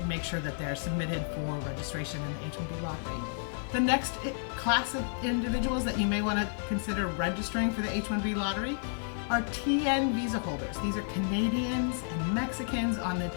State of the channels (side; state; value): right; silent; 57 dB below the other